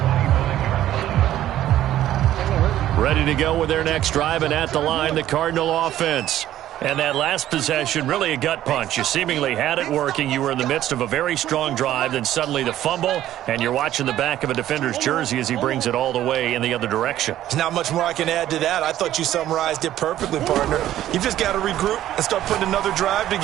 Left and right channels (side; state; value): left; quieter; 12.8 dB